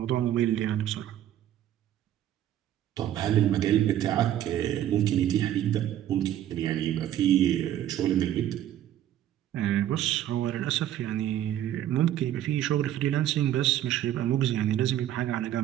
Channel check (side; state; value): left; quieter; 11.8 dB